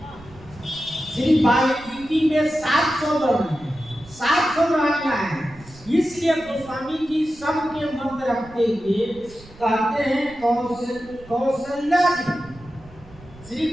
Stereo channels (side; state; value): right; noise; rumble, 21 dB below the sound